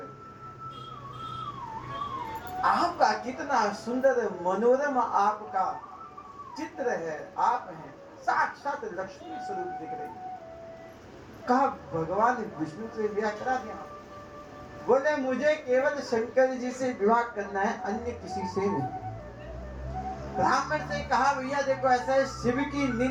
आपका कितना सुंदर मनोरम आपका चित्र है, आप हैं साक्षात लक्ष्मी स्वरूप दिख रही। कहा भगवान विष्णु से विवाह करा दिया। बोले मुझे केवल शंकर जी से विवाह करना है, अन्य किसी से नहीं। ब्राह्मण से कहा भैया देखो ऐसा है, शिव की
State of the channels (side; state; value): both; identical; correlation 1.00